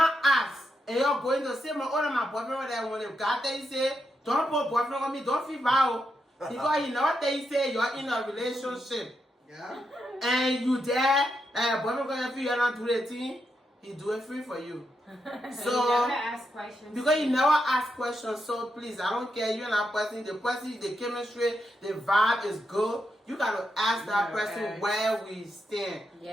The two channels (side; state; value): both; normal; correlation 0.84